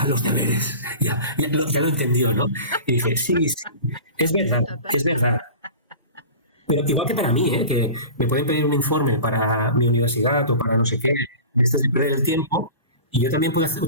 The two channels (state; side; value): inverted; both; correlation -0.36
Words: los deberes, ya lo entendió, ¿no? Y dije, sí, es verdad. Pero igual que para mí, que me pueden pedir un informe para mi universidad o para no sé qué, de estas de perder el tiempo, y yo también puedo